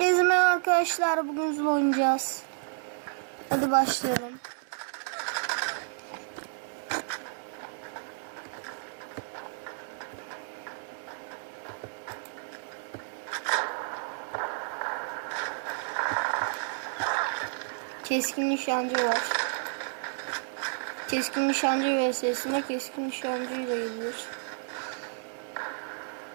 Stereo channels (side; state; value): left; silent; digital silence